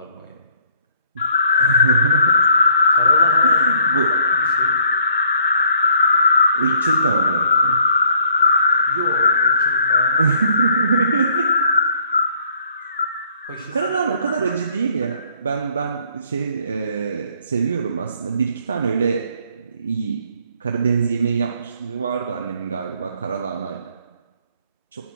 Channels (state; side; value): inverted; both; correlation -0.64